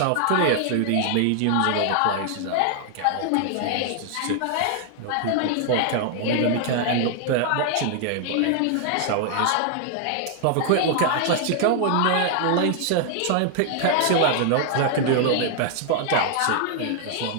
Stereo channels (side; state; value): both; different; correlation 0.00